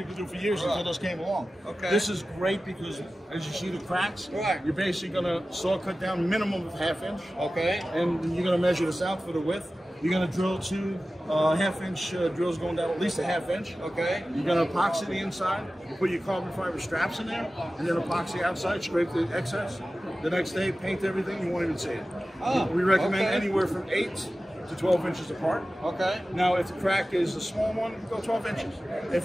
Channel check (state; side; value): normal; both; correlation 0.95